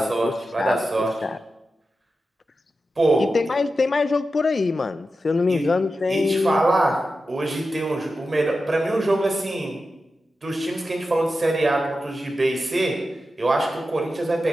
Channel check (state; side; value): normal; both; correlation 0.91